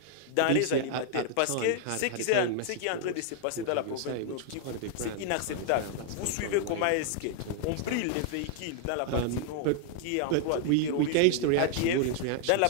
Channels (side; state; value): both; different; correlation -0.01